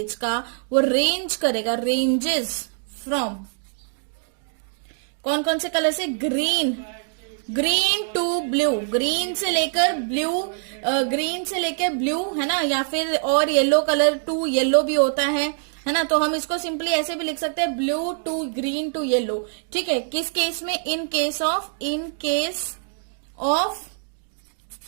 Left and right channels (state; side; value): silent; left; 63 dB below the other